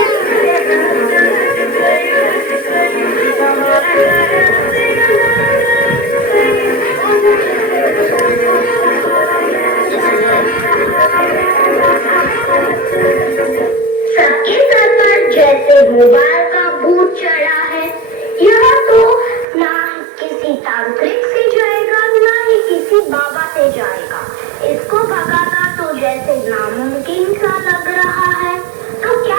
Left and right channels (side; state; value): left; drops out; at 19.5 s